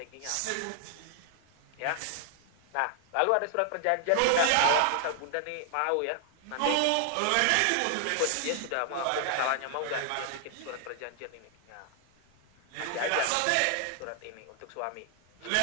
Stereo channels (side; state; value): both; different; correlation 0.00